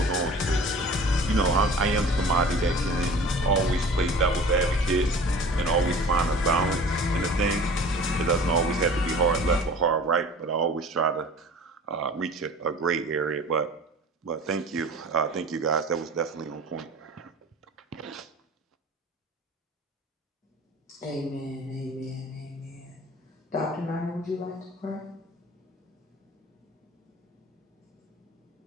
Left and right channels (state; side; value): normal; both; correlation 0.42